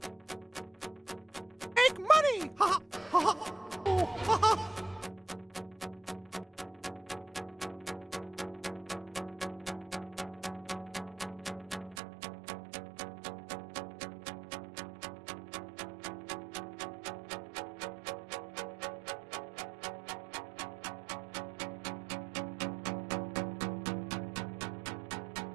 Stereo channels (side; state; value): left; drops out; at 12.0 s